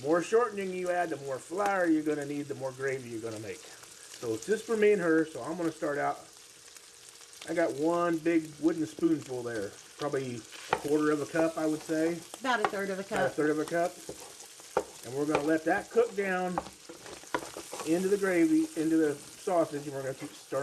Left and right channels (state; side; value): identical; both; correlation 1.00